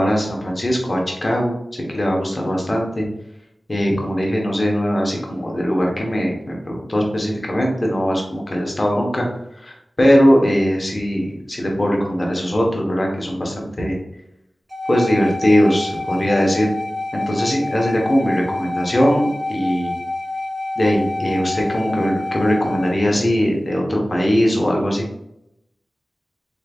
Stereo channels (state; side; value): normal; both; correlation 0.96